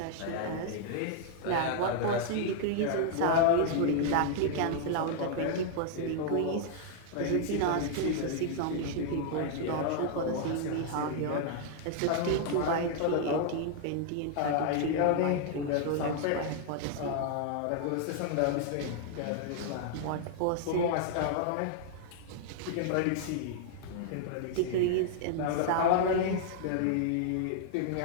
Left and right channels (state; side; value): different; both; correlation -0.01